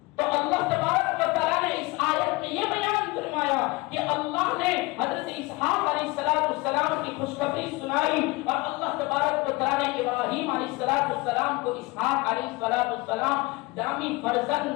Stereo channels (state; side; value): quieter; right; 23.7 dB